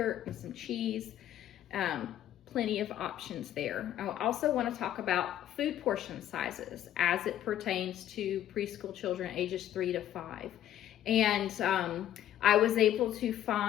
and some cheese. Plenty of options there. I also want to talk about food portion sizes as it pertains to preschool children ages 3 to 5. And I was able to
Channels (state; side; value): quieter; right; 11.7 dB